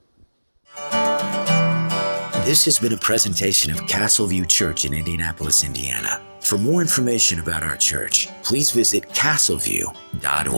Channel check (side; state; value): both; inverted; correlation -1.00